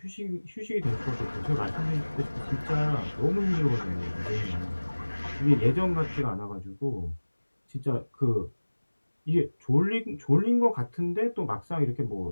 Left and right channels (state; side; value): inverted; both; correlation -1.00